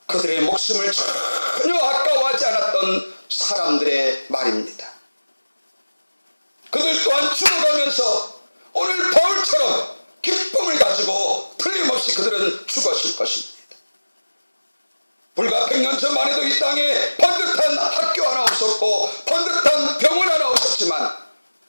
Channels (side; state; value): both; inverted; correlation -1.00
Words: 그들의 목숨을 전혀 아까워하지 않았던 사람들의 말입니다. 그들 또한 죽어가면서 오늘 바울처럼 기쁨을 가지고 틀림없이 그들은 죽었을 것입니다. 불과 100년 전만 해도 이 땅에 번듯한 학교 하나 없었고 번듯한 병원 하나 없었지만